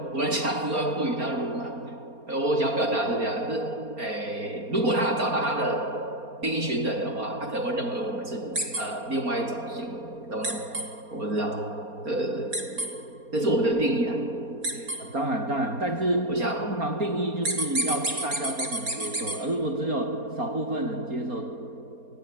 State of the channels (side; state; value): left; late; 4.3 ms